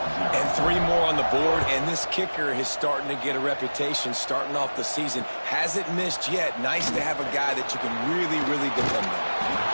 And 3 more on the board, and this kicker is starting to get a reputation starting off the season. Hasn't missed yet. Nice to have a guy that you can really, really depend on.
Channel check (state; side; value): inverted; both; correlation -1.00